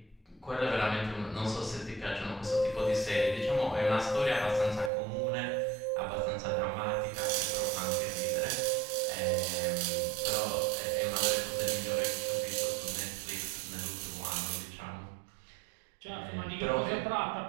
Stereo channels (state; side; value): drops out; left; at 4.9 s